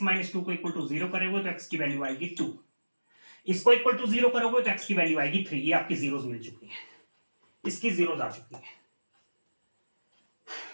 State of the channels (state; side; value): inverted; both; correlation -1.00